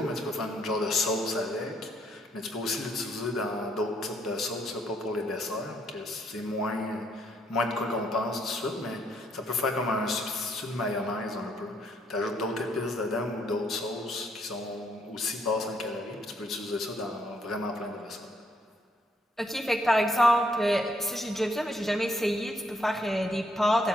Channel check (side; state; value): both; normal; correlation 0.71